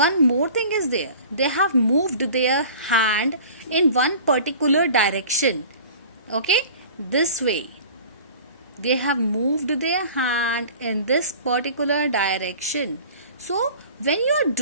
more thing is there. They have moved their hand in one particular direction. Okay, this way. They have moved their hand in this particular direction. So, when you are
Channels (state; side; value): inverted; both; correlation -0.43